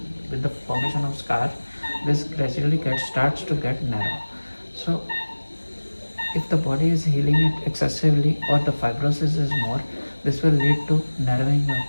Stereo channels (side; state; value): both; inverted; correlation -1.00